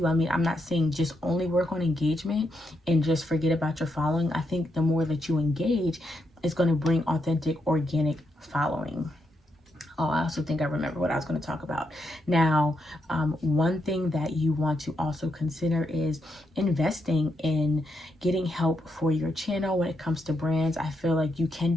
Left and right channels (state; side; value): normal; both; correlation 0.81